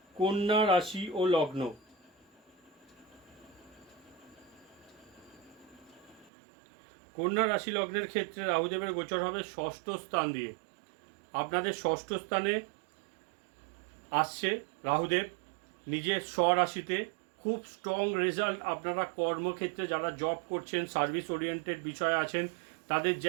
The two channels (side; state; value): left; drops out; at 6.3 s